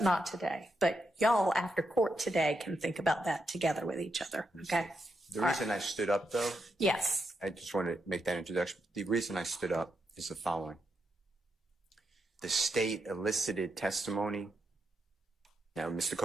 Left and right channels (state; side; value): normal; both; correlation 0.83